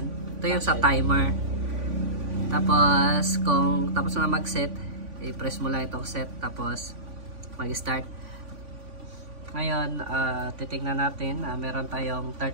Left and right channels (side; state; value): left; late; 3.5 ms